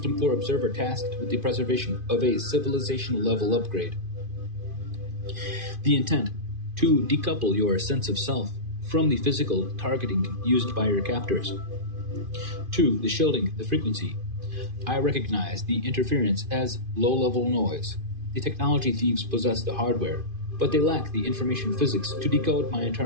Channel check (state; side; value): late; left; 2.5 ms